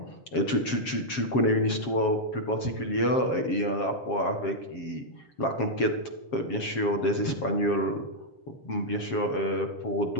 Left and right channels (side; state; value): right; late; 7.4 ms